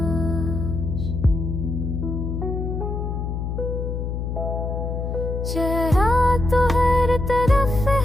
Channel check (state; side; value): noise; left; hum, 3 dB below the sound